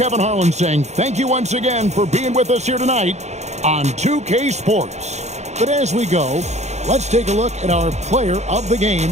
Harlan saying thank you once again for being with us here tonight on 2K Sports. But as we go, let's take a look at our player of the game,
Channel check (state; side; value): late; left; 0.33 ms